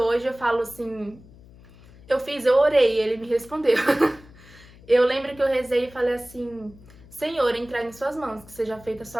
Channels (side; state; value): left; noise; hum, 23 dB below the sound